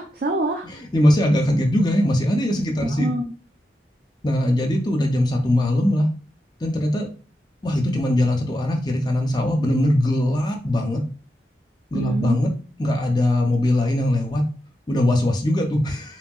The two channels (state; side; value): normal; both; correlation 0.88